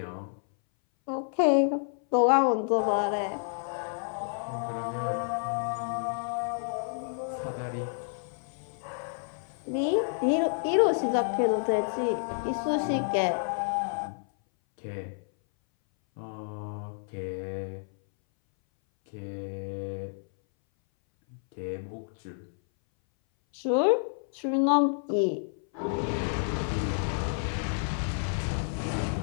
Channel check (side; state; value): right; silent; 58 dB below the other